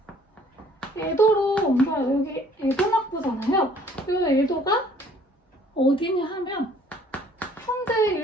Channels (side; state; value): both; normal; correlation 0.58